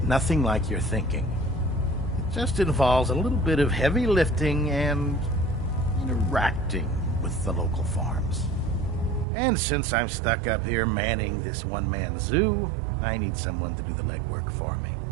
nothing like you're thinking. It just involves a little bit of heavy lifting and interacting with the local farms. And since I'm stuck up here manning this one-man zoo, I need someone to do the legwork for me.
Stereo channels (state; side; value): drops out; left; at 9.2 s